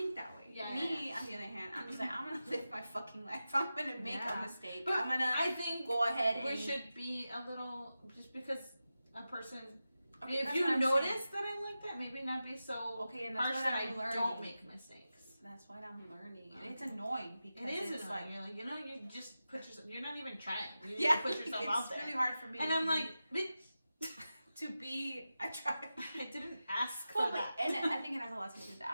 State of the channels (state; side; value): inverted; both; correlation -0.93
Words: that way. Yeah. Me, on the other hand, I'm just like I'm gonna live my fucking life. I'm gonna make a mistake. But I'm gonna. I think go ahead. We should be a little just because a person. Okay, if you notice that I'm like that, maybe not be so and harsh that I don't make mistakes. That's what I'm learning, and it's annoying because it's annoying. You're like, you just put yourself. You're not even trying. You just put yourself out there. It's really hard for me. And I'm like, bitch, to be. I tried. I didn't ask for that. And I think it has a lot to do with that.